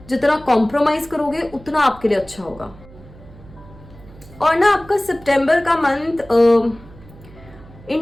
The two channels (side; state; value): right; noise; hum, 21 dB below the sound